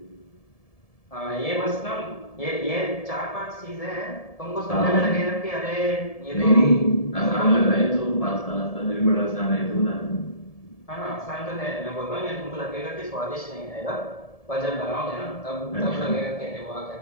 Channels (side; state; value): right; late; 1.7 ms